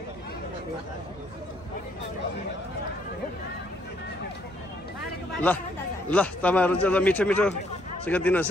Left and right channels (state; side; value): normal; both; correlation 0.69